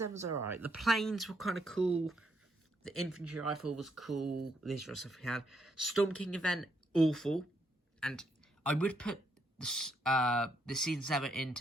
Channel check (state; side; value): normal; both; correlation 0.75